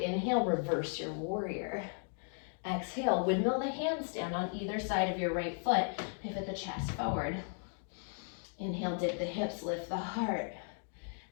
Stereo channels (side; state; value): right; silent; 54 dB below the other